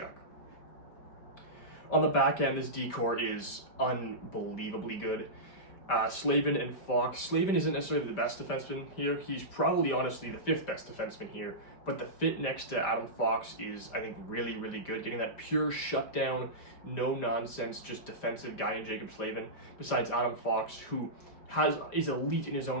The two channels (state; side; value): late; right; 5.0 ms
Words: On the back end, this decor is unbelievably good. Slavin and Fox. Slavin isn't necessarily the best defenseman here. He's probably honestly the fifth best defenseman here, but the fit next to Adam Fox is, I think, really, really good. Getting that pure shutdown, no nonsense, just defensive guy in Jacob Slavin, besides Adam Fox, who is elite in his own